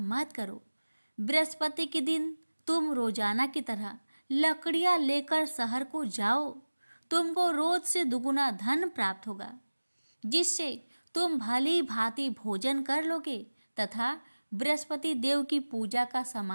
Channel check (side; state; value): both; inverted; correlation -1.00